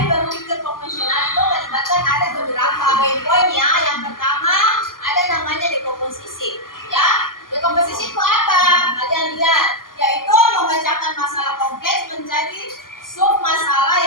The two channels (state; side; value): late; right; 0.91 ms